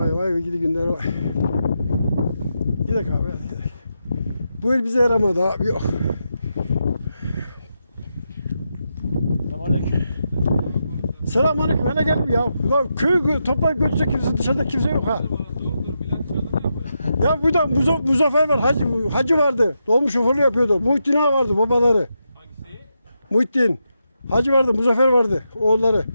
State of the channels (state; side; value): inverted; both; correlation -0.85